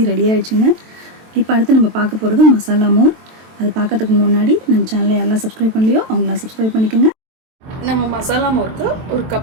ரெடி ஆகிடுச்சுங்க. இப்போ அடுத்து நம்ம பார்க்க போகிறது மசாலா மோர். அது பார்க்கறதுக்கு முன்னாடி நம்ம சேனலை யாரெல்லாம் சப்ஸ்கிரைப் பண்ணலையோ அவங்களாம் சப்ஸ்கிரைப் பண்ணிக்கோங்க. நம்ம மசாலா மோருக்கு 1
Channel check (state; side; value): late; left; 23 ms